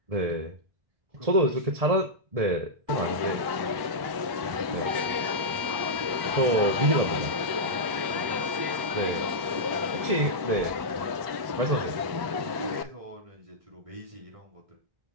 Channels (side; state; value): left; late; 1.1 ms